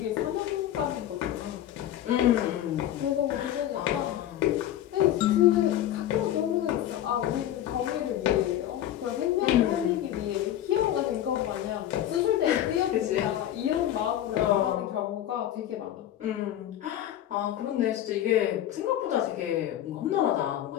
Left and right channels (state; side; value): quieter; right; 12.0 dB